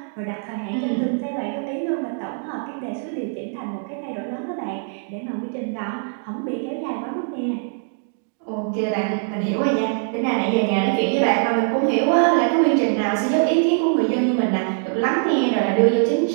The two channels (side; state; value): left; silent; 57 dB below the other